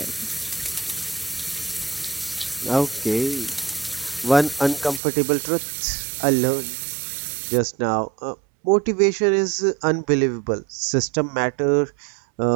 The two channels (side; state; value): left; drops out; at 5.0 s